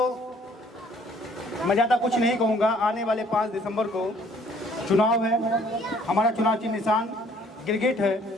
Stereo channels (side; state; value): both; normal; correlation 0.59